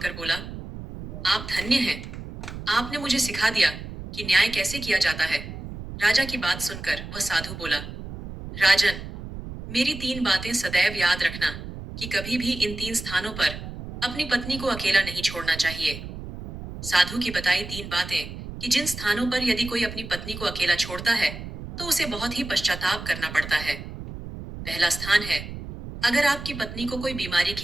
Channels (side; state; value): right; noise; rumble, 10 dB below the sound